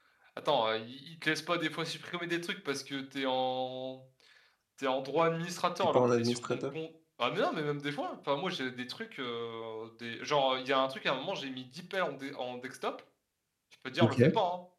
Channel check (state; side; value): identical; both; correlation 1.00